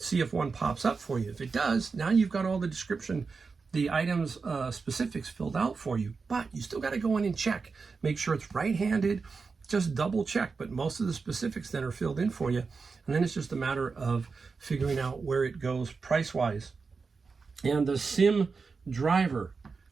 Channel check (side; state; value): left; quieter; 4.7 dB